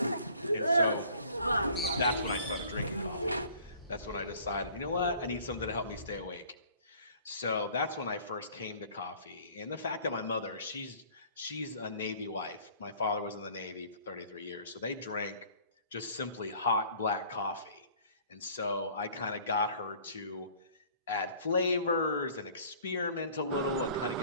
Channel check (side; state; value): both; inverted; correlation -0.53